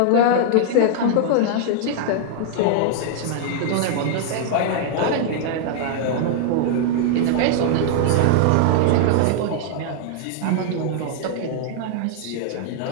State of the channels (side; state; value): both; different; correlation -0.01